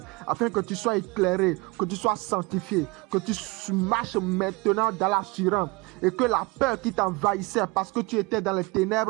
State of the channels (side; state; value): left; quieter; 25.9 dB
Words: afin que tu sois éclairé, que tu sois sanctifié, que tu marches maintenant dans l'assurance et que la peur qui t'envahissait parce que tu étais dans les